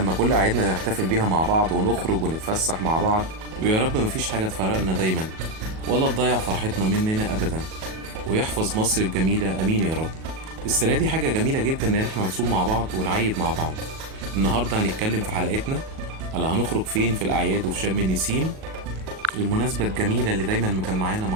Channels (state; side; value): late; left; 37 ms